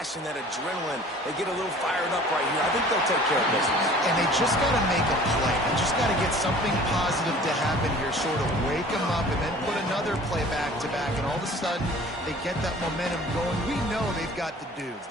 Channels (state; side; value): normal; both; correlation 0.47